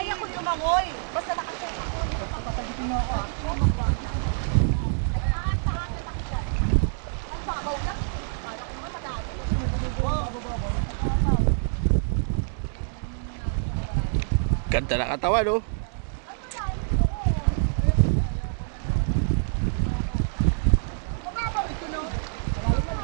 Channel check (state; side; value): silent; left; digital silence